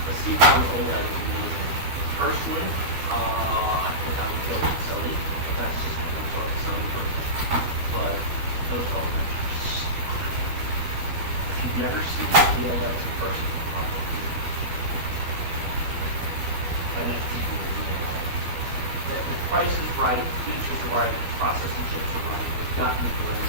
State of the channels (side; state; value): left; late; 12 ms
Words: The C1 OLED is amazing. Personally, I think I would go with Sony, but that's just kind of a Sony person. But those OLEDs are so good. If you've never seen the OLEDs in person, probably an FTV will be there. The price is right, features are right, processing chips are right. They've gotten to where